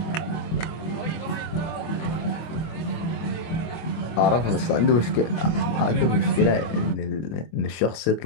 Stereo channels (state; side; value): late; right; 24 ms